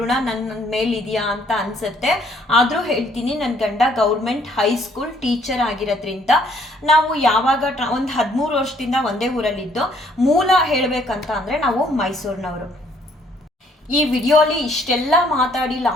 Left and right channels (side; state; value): both; normal; correlation 0.64